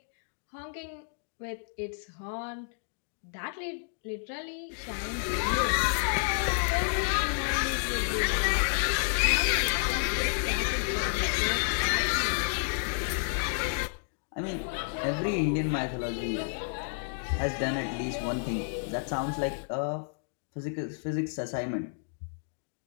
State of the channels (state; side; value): silent; right; digital silence